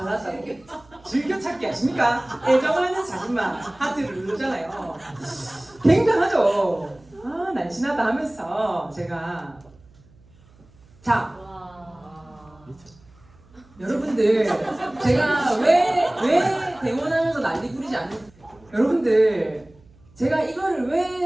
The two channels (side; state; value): right; noise; hum, 28 dB below the sound